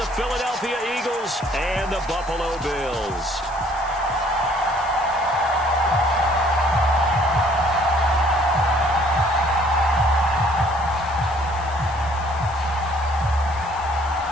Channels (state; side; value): noise; left; hiss, 21 dB below the sound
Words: Philadelphia Eagles and the Buffalo Bills.